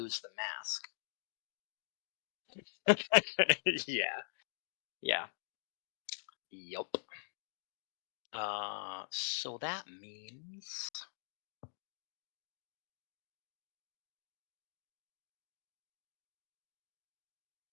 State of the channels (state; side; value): silent; right; digital silence